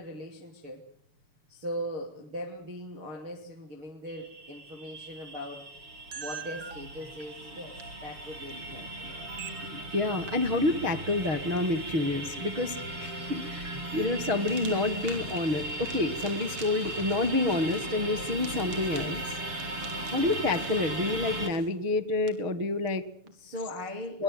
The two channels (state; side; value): late; left; 6.9 ms